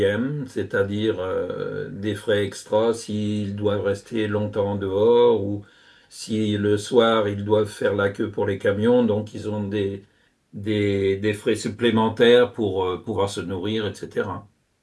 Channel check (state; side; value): identical; both; correlation 1.00